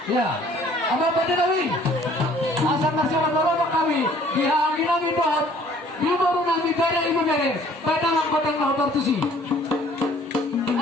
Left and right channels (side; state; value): both; normal; correlation 0.56